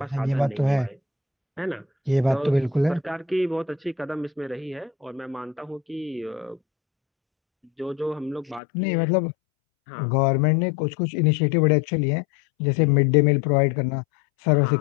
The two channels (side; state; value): right; drops out; at 8.6 s